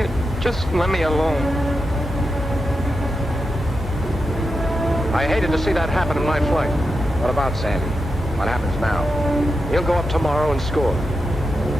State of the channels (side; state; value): both; normal; correlation 0.88